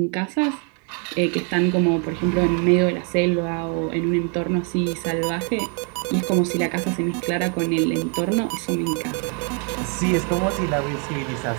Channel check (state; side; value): quieter; left; 38.4 dB